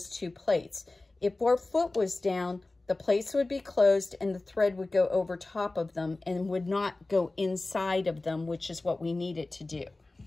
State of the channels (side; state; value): right; quieter; 3.1 dB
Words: 2 plates. If our foot was down, the plates would be closed and the thread would go over top of them and would not go inside of them, which is what we need it to do.